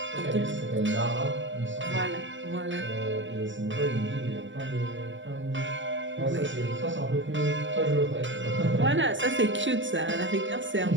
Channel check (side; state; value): left; late; 0.55 ms